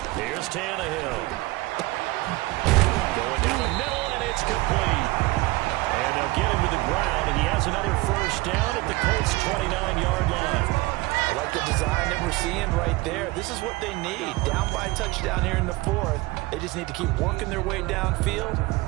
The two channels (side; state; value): left; quieter; 21.1 dB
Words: Here's Tannehill. Going down the middle, and it's complete. And they'll get him to the ground, and he has another first down at the Colts' 29-yard line. I like the design that we're seeing right there. This is what they need. Down by a touchdown here in the 4th. They just need to keep working their way downfield.